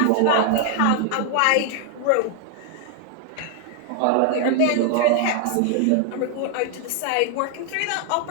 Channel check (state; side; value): different; both; correlation 0.00